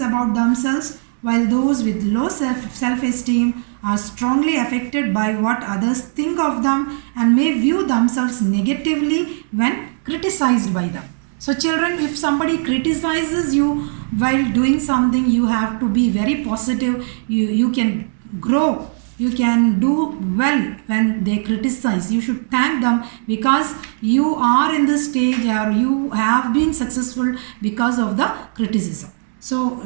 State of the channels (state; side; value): silent; left; digital silence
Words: about themselves, while those with low self-esteem are strongly affected by what others think of them and may view themselves negatively when criticized by them. So children, if somebody criticizes you while doing something, you have to be very positive. You can grow. You can do well when they criticize. You should thank them because you are in this stage or you have been successful because of the criticism. So